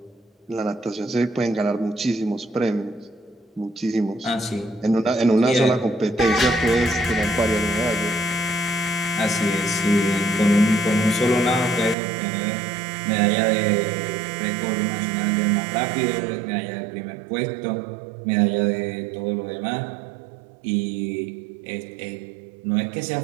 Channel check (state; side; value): drops out; left; at 12.0 s